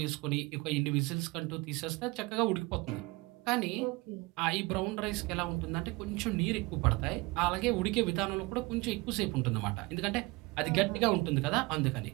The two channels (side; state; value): left; quieter; 24.1 dB